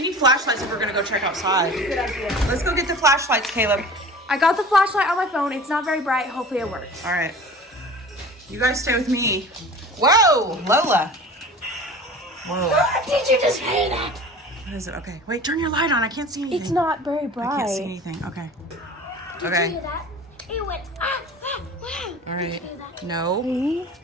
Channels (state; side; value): normal; both; correlation 0.40